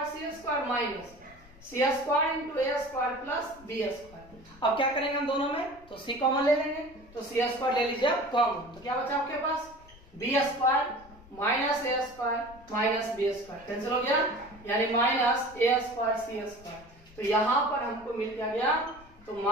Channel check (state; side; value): noise; left; rumble, 23 dB below the sound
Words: c square minus c square into a square plus b square. अब क्या करेंगे हम दोनों में, तो c कॉमन ले लेंगे, तो c स्क्वायर ले लीजिए कॉमन। तो क्या बचा आपके पास b square minus a square minus b square cancel हो गया, यानी minus a square c square. तो यहाँ पर हमको मिल क्या गया, तो